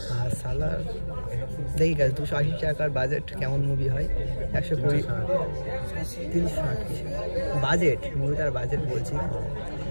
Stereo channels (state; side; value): inverted; both; correlation -1.00